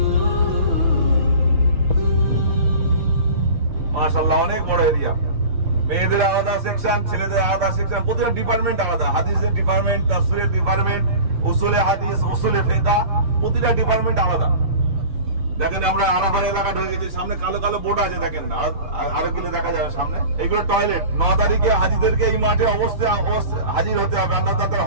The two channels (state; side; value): late; left; 6.7 ms